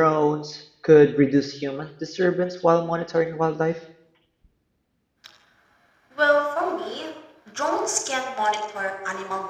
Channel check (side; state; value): both; identical; correlation 1.00